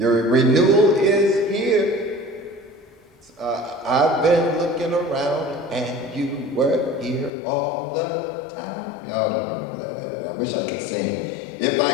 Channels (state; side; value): drops out; right; at 7.3 s